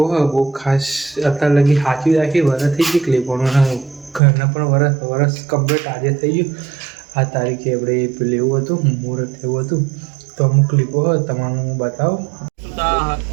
હોય બહુ ખાસ અત્યારે લગી સાચવી રાખી. વરસ થઈ ગઈ ક્લિપોનું, ઘરના પણ વરસ કમ્પ્લીટ આજે થઈ ગયું. આ તારીખે આપણે પેલું એવું હતું મુહૂર્ત એવું હતું. તો અમુક ક્લિપો હોય તમારું હું બતાવું.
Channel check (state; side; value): drops out; left; at 4.2 s